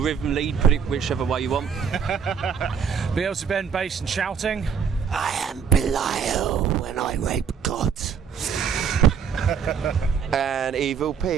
rhythm lead, put it whichever way you want. Beelzebub, bass and shouting. I am Belial when I rape gods. And Evil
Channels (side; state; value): left; quieter; 6.9 dB